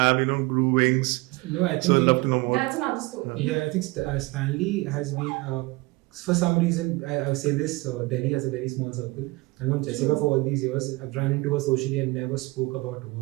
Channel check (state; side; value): quieter; left; 23.3 dB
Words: grew wings. No, I think so I'd love to know more. That's another story. Yeah, I think Stanley has been, for some reason, I would say this, Delhi has a very small circle. I've known Jessica for all these years. I've run into her socially and never spoke about